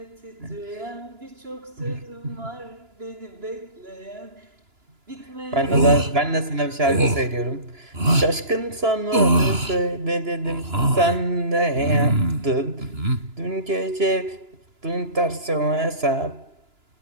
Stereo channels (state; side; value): late; left; 2.9 ms